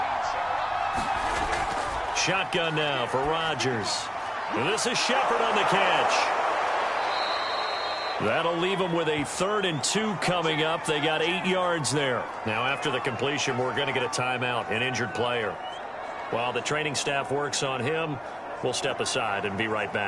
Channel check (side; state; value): both; identical; correlation 1.00